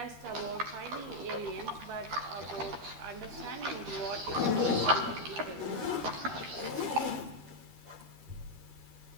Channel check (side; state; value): left; late; 13 ms